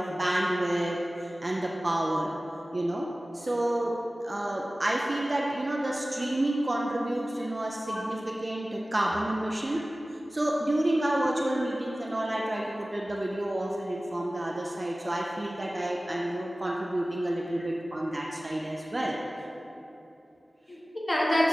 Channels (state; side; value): normal; both; correlation 0.97